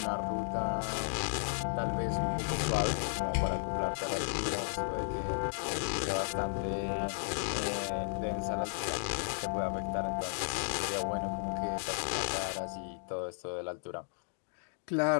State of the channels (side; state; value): right; silent; digital silence